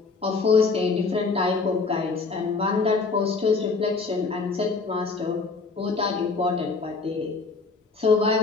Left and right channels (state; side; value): quieter; right; 4.3 dB